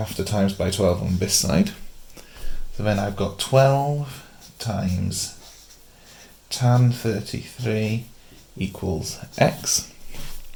to times by 12 on this side. So then I've got 12 times tan 33 equals x.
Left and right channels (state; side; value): identical; both; correlation 1.00